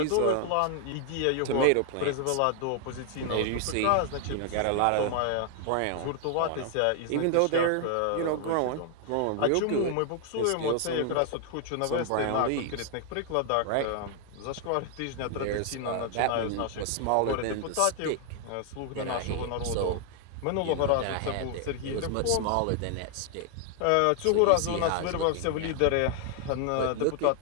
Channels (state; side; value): different; both; correlation 0.00